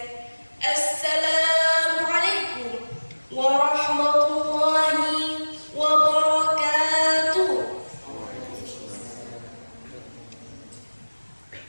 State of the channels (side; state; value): both; inverted; correlation -1.00